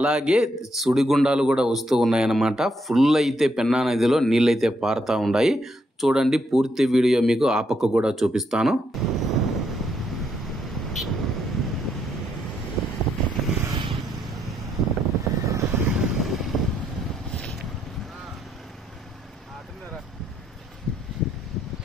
సుడిగుండాలు కూడా వస్తూ ఉన్నాయన్నమాట. ఫుల్ అయితే పెన్నా నదిలో నీళ్ళైతే పారుతూ ఉన్నాయి. చూడండి, పూర్తి వీడియో మీకు ఆ పక్క కూడా చూపిస్తాను.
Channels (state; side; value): normal; both; correlation 0.76